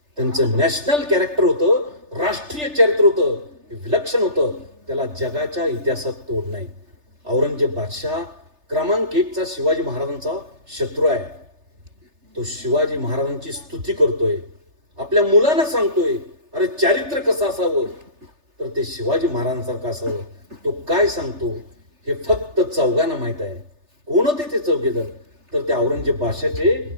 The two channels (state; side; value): late; left; 3.3 ms